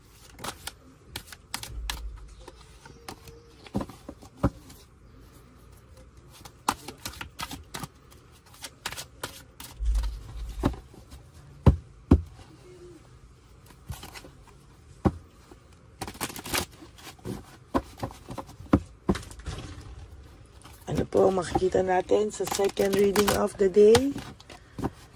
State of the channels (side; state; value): both; identical; correlation 1.00